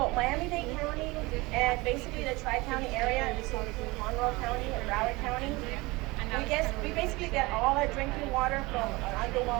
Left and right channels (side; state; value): left; quieter; 22.9 dB